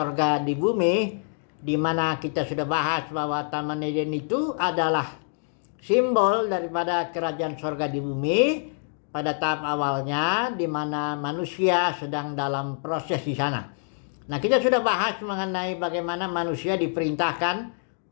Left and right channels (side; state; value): right; silent; 61 dB below the other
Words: di bumi, di mana kita sudah bahas bahwa Taman Eden itu adalah simbol daripada kerajaan sorga di bumi pada tahap awalnya, di mana manusia sedang dalam proses di sana. Nah, kita sudah bahas mengenai bagaimana manusia diperintahkan